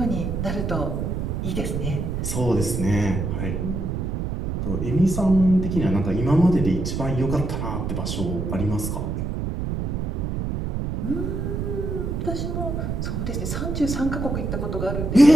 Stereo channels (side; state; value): right; noise; rumble, 2 dB below the sound